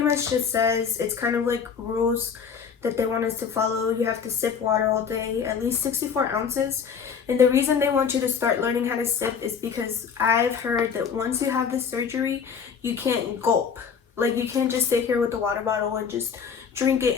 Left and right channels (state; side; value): quieter; right; 6.6 dB